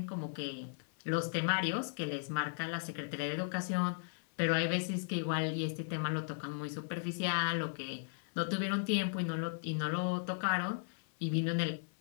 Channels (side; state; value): right; silent; 53 dB below the other